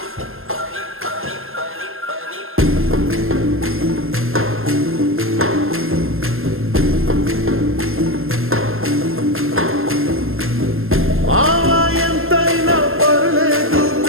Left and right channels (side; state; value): left; late; 0.60 ms